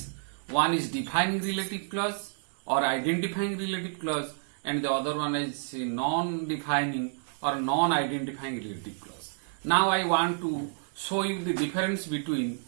One is defining relative clause or identifying relative clause, and the other one is non-defining or non-identifying relative clause. Now I want to show you the difference between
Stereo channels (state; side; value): silent; left; digital silence